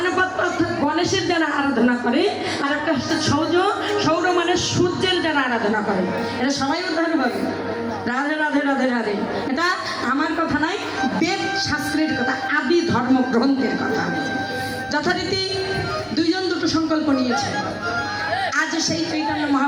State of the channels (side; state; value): both; identical; correlation 1.00